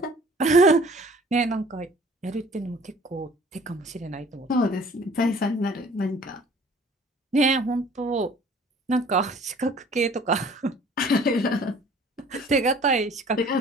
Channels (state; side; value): normal; both; correlation 0.52